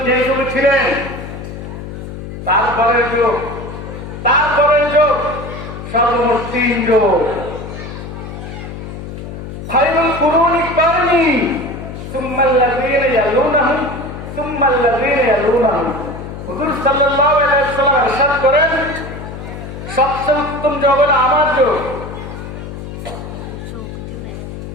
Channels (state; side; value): noise; left; hum, 10 dB below the sound